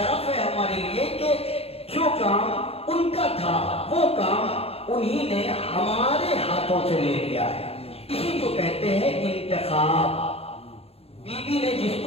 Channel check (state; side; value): late; right; 0.29 ms